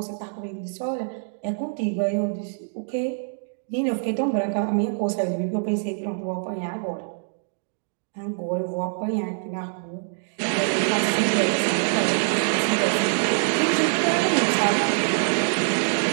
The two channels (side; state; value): left; silent; digital silence